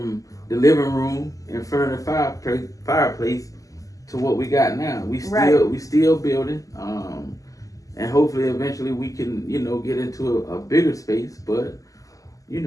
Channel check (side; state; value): right; late; 0.17 ms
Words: the living room in front of the fireplace to what we got now. We still building, and hopefully eventually we can get into a bigger space. But we